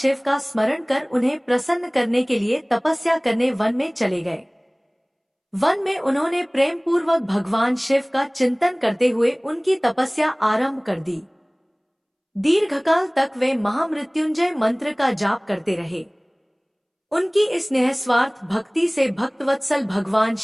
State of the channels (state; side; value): identical; both; correlation 1.00